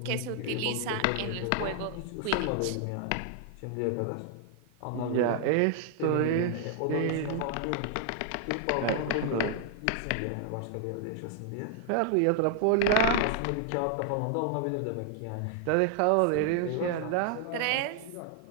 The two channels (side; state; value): both; different; correlation 0.00